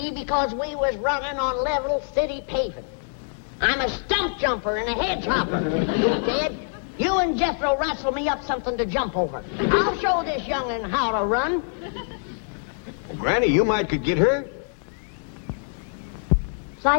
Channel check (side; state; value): right; silent; 62 dB below the other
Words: because we was running on level city paving. I'm a stump jumper and a hedge hopper. Jed, you and Jethro wrestle me up something to jump over. I'll show this young'un how to run. Well, Granny, you might could get hurt.